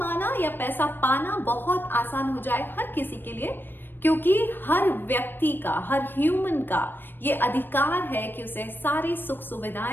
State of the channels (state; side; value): late; right; 0.096 ms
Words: या पैसा पाना बहुत आसान हो जाए हर किसी के लिए। क्योंकि हर व्यक्ति का, हर ह्यूमन का ये अधिकार है कि उसे सारी सुख